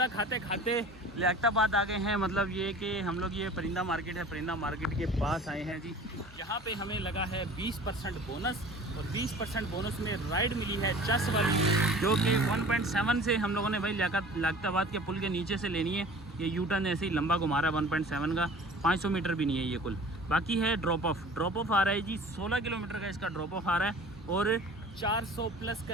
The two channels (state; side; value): normal; both; correlation 0.44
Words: खाते खाते लियाकताबाद आ गए हैं। मतलब ये कि हम लोग, ये परिंदा मार्केट है, परिंदा मार्केट के पास आए हैं जी, जहाँ पे हमें लगा है 20% बोनस और 20% बोनस में राइड मिली है चस वाली, जो कि 1.7 से हम लोगों ने भाई लियाकताबाद के पुल के नीचे से लेनी है। ये यूटर्न ऐसे ही लंबा घुमा रहा है 1.7 का, 500 मीटर भी नहीं है ये कुल। बाकी है ड्रॉप ऑफ आ रहा है जी, 16 किलोमीटर का इसका ड्रॉप ऑफ आ रहा है और 400 प्लस